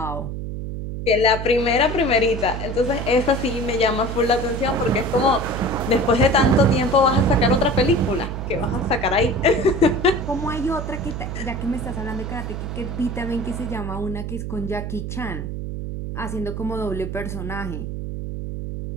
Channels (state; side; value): noise; right; hum, 5 dB below the sound